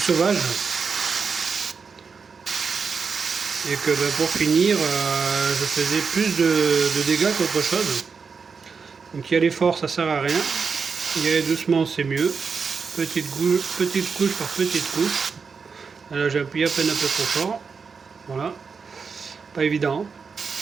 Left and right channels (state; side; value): quieter; left; 5.4 dB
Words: sauvage. Et que pour finir, je faisais plus de dégâts qu'autre chose. Donc y aller fort ça sert à rien, y aller doucement c'est mieux. Petite couche par petite couche. Là j'ai appuyé à peine un peu trop fort. Voilà. Pas évident.